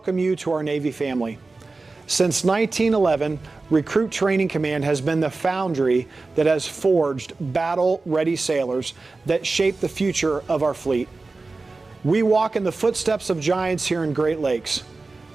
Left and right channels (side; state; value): left; quieter; 3.6 dB